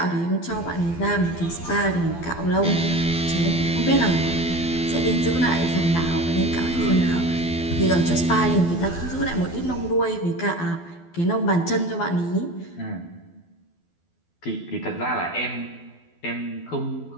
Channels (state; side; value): late; right; 12 ms